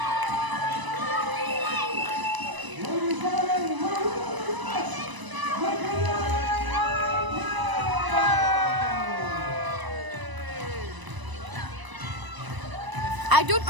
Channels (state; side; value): late; left; 1.0 ms